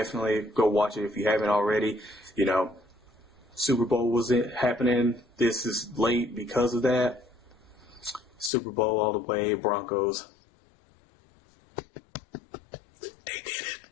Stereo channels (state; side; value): drops out; right; at 8.5 s